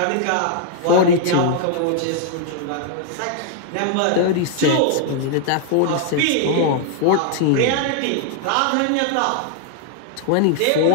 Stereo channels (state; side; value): different; both; correlation 0.00